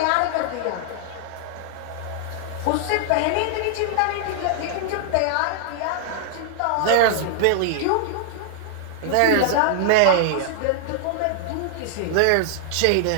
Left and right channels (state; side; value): different; both; correlation 0.00